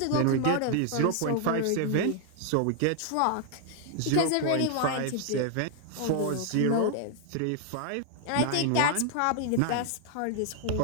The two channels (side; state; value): both; different; correlation 0.00